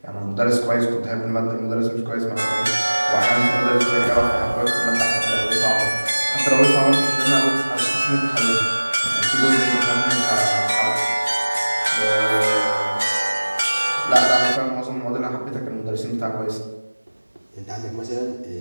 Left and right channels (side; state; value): both; inverted; correlation -1.00